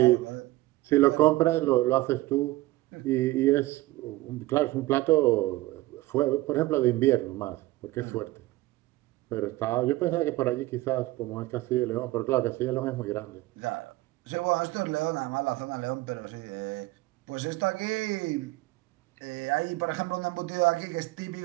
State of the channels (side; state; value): left; quieter; 18.7 dB